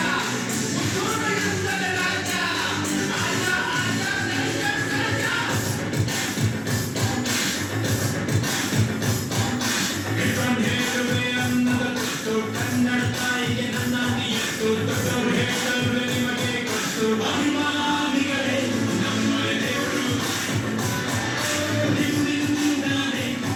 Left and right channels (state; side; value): identical; both; correlation 1.00